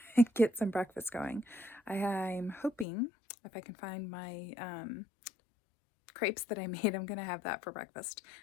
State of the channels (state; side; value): drops out; right; at 2.9 s